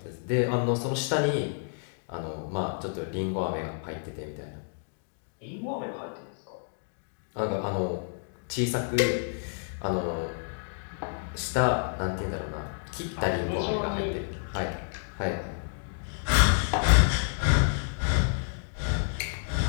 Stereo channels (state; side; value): silent; right; digital silence